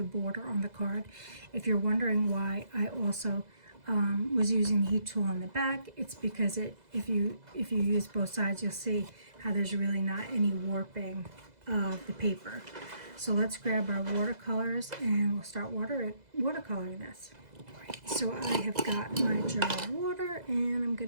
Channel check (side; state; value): left; late; 2.0 ms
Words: border on the card. If you're wondering why I also was using the heat tool on the back, it's because if you use both sides, you'll see how there's really not any warping of the paper. So let's grab our watercolors and we'll start watercoloring this. So I have got my jar of water and I'm